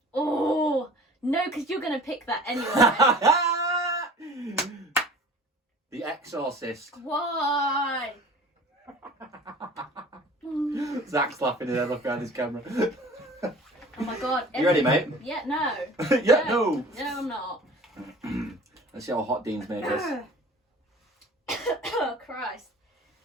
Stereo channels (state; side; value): normal; both; correlation 0.44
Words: Oh no, because you're gonna pick that anyway. The Exorcist. Why? Zach's laughing his head off behind his camera. Oh my God. You ready, mate? Yeah, no. Yeah, no. No, I'm not. Let's see how hot Dean's made this. Oh Christ.